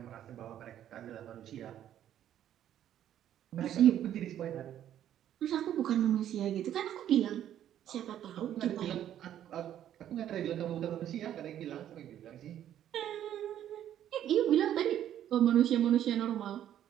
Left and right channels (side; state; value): left; quieter; 11.0 dB